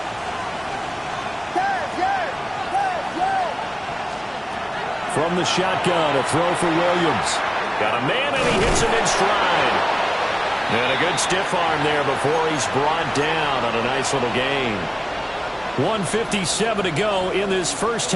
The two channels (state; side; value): identical; both; correlation 1.00